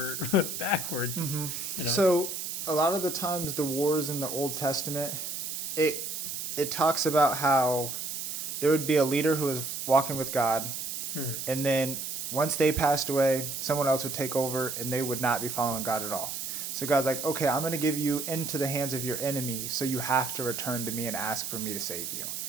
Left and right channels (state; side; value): noise; right; hiss, 5 dB below the sound